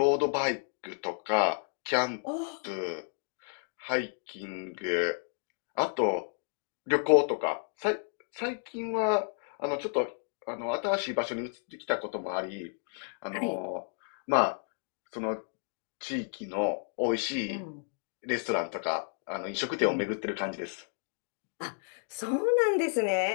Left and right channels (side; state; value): right; silent; 57 dB below the other